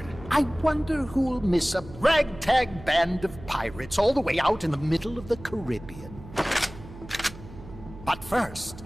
I wonder who'll miss a ragtag band of pirates all the way out in the middle of the Caribbean. But first,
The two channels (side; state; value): right; noise; hum, 16 dB below the sound